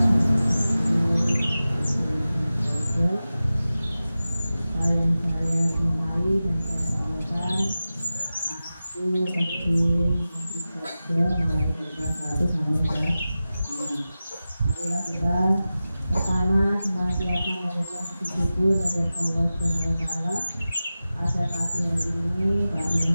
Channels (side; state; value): both; inverted; correlation -0.95